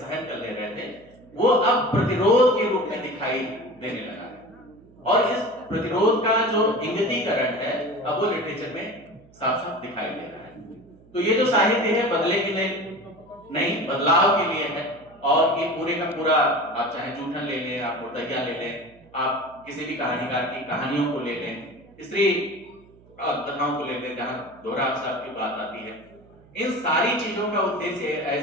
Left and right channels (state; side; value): noise; right; hum, 26 dB below the sound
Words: कर ले रहे थे, वो अब प्रतिरोध के रूप में दिखाई देने लगा है और इस प्रतिरोध का जो इंगितीकरण है अब वो लिटरेचर में साफ साफ दिखाई दे रहा है। तो ये जो साहित्य है बदले के लिए नहीं, बदलाव के लिए है। और ये पूरे का पूरा, आप चाहे जूठन ले लें, आप मुर्दैया ले लें, आप किसी भी कहानीकार की कहानियों को ले लें, स्त्री कथाओं को ले लें जहाँ दोहरा अवसाद की बात आती है, इन सारी चीजों का उद्देश्य